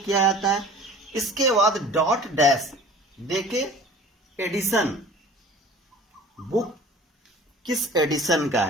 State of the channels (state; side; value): normal; both; correlation 0.44